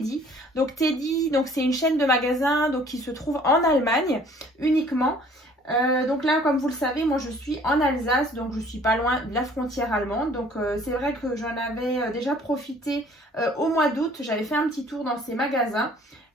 Donc Teddy, c'est une chaîne de magasins qui se trouve en Allemagne uniquement. Donc là, comme vous le savez, moi je suis en Alsace, donc je suis pas loin de la frontière allemande. Donc c'est vrai que j'en avais déjà profité au mois d'août, j'avais fait un petit tour dans ces magasins.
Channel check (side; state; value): both; normal; correlation 0.55